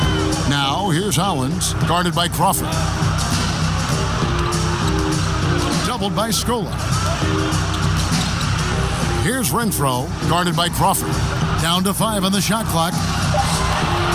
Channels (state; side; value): identical; both; correlation 1.00